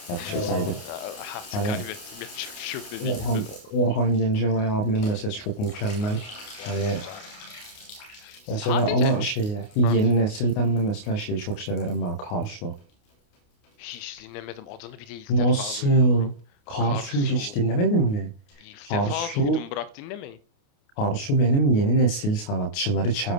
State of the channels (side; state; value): right; late; 29 ms